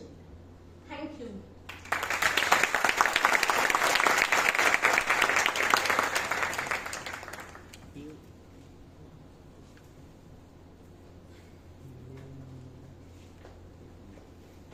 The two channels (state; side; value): identical; both; correlation 1.00